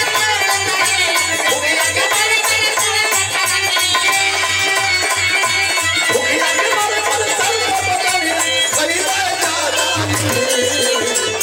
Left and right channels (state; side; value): identical; both; correlation 1.00